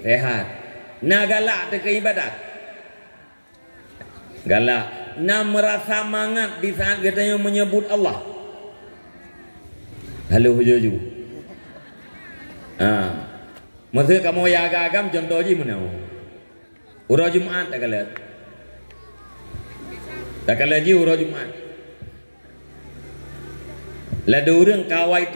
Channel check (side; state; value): both; inverted; correlation -1.00